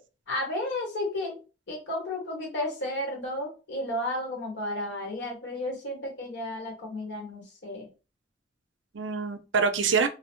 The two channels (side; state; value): both; normal; correlation 0.01